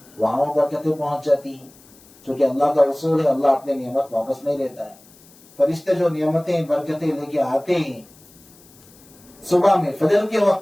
وہاں برکتیں پہنچ جاتی ہیں، چونکہ اللہ کا اصول ہے، اللہ اپنے نعمت واپس نہیں لیتا ہے۔ فرشتے جو نعمتیں برکتیں لے کے آتے ہیں صبح میں فجر کے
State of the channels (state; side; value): noise; left; hiss, 26 dB below the sound